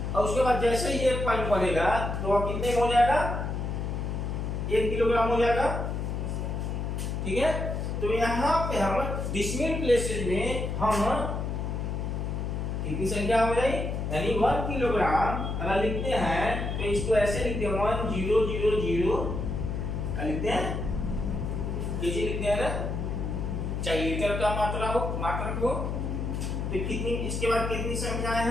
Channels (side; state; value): left; noise; hum, 2 dB below the sound